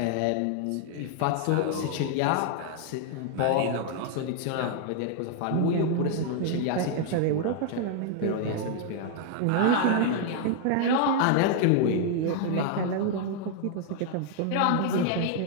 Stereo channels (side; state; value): both; different; correlation 0.00